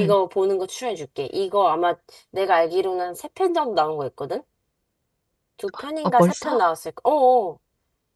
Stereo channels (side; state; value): both; identical; correlation 1.00